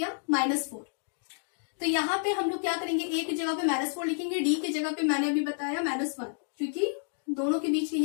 -4। तो यहाँ पे हम लोग क्या करेंगे, a की जगह पे -4 लिखेंगे, d की जगह पे मैंने अभी बताया -1, क्योंकि दोनों के बीच,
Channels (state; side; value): silent; right; digital silence